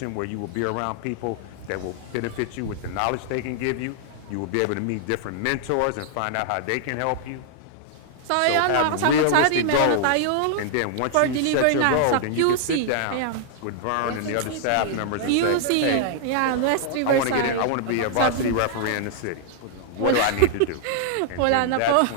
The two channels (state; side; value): different; both; correlation -0.01